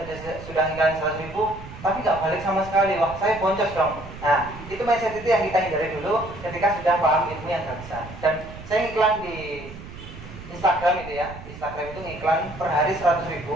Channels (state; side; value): noise; right; rumble, 14 dB below the sound